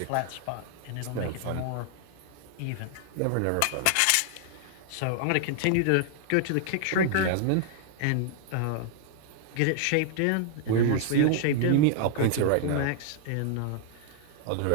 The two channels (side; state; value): both; different; correlation 0.00